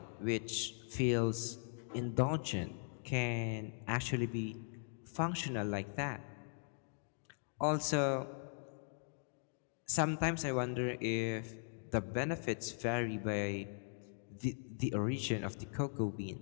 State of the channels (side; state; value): right; silent; digital silence